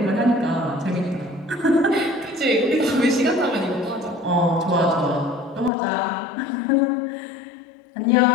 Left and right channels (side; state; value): right; drops out; at 5.7 s